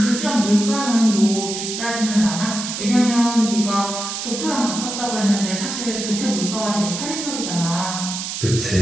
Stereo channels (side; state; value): right; noise; hiss, 5 dB below the sound